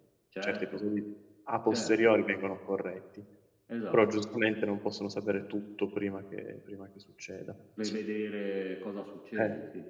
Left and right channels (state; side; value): identical; both; correlation 1.00